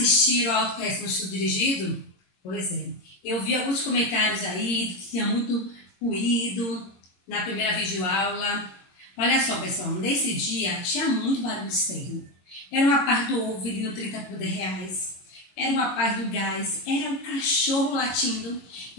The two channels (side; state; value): right; late; 22 ms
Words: ao Autoconhecimento no Estudo Dirigido? Pois é. Eu vi alguns comentários aí que tinha muito ruído na primeira videoaula. Olha só, pessoal, nesse dia tinha muito barulho externo. Era uma parte do ovo vendendo 30 por R$10. Era uma parte do gás. Era um cachorro latindo.